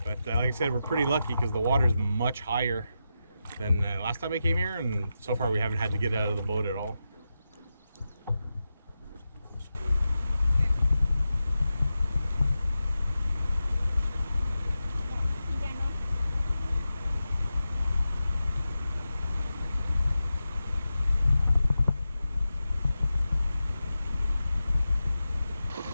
But like I said, we're pretty lucky because the water is much higher than last time I came here, and so far we haven't had to get out of the boat at all.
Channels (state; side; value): inverted; both; correlation -0.90